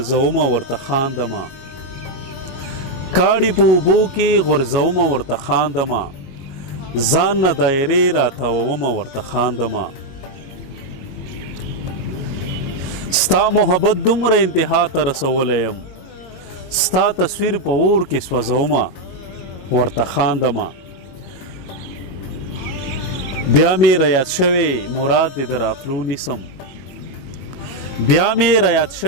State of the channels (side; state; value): right; late; 22 ms